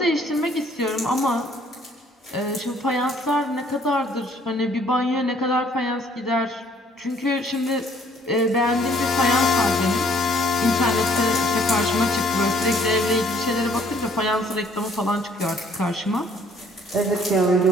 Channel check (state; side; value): normal; both; correlation 0.61